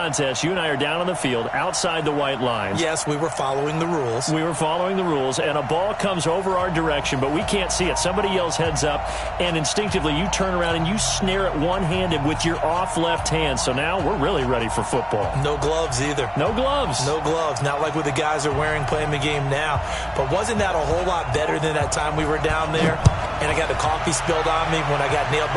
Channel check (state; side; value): identical; both; correlation 1.00